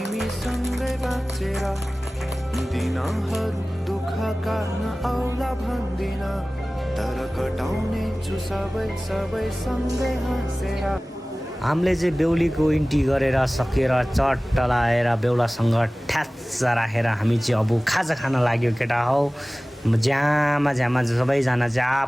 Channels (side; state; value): both; normal; correlation 0.98